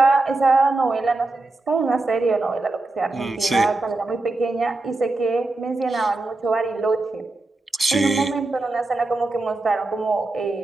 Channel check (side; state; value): left; quieter; 3.1 dB